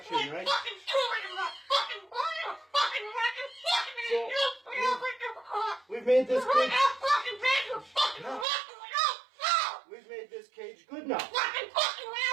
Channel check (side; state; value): left; drops out; at 8.5 s